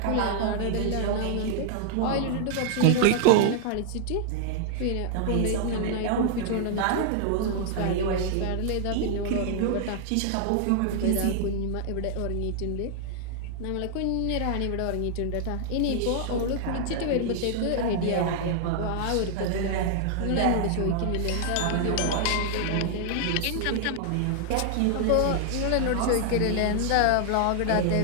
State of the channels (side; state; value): both; different; correlation 0.00